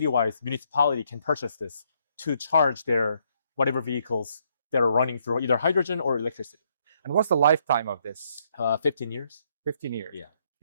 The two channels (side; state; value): both; inverted; correlation -0.72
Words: municipality can purchase this to charge their whatever vehicles that are running through either hydrogen or electricity. And what's the lifetime of this? 15 years. 15 years. Yeah.